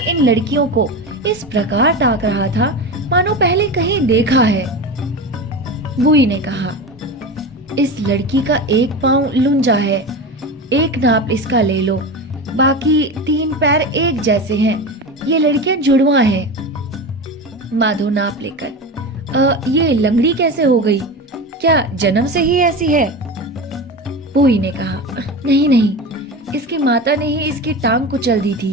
इन लड़कियों को इस प्रकार ताक रहा था मानो पहले कहीं देखा है। बुई ने कहा, इस लड़की का एक पांव लुंजा है, एक नाप इसका ले लो, बाकी 3 पैर एक जैसे हैं, ये लड़कियां जुड़वा हैं। माधो नाप लेकर, ये लंगड़ी कैसे हो गई? क्या जन्म से ही ऐसी है? बुई ने कहा, नहीं नहीं, इसकी माता ने ही इसकी टांग कुचल दी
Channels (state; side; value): normal; both; correlation 0.25